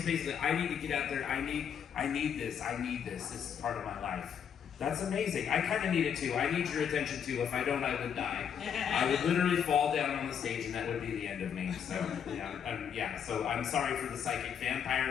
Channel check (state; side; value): quieter; right; 8.0 dB